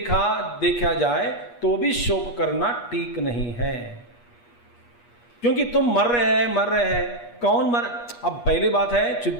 जाए तो भी शोक करना ठीक नहीं है, क्योंकि तुम मर रहे हैं। कौन मर, अब पहली बात है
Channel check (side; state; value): right; late; 8.4 ms